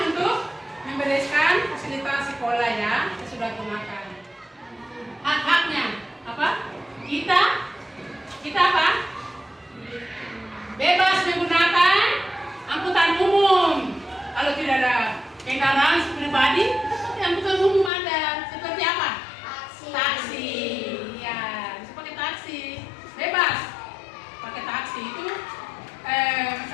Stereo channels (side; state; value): right; drops out; at 17.9 s